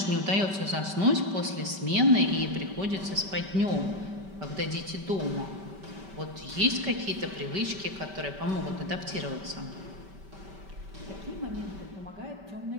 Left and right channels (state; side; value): late; left; 5.2 ms